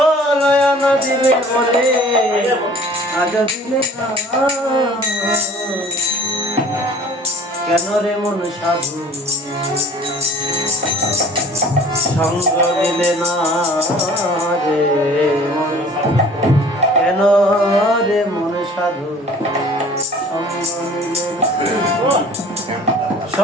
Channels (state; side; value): normal; both; correlation 0.48